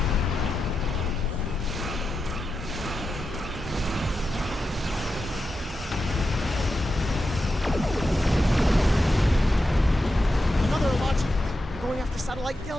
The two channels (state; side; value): normal; both; correlation 0.89